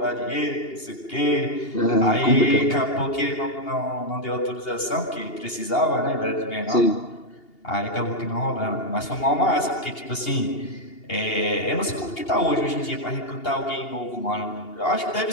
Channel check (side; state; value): right; late; 2.8 ms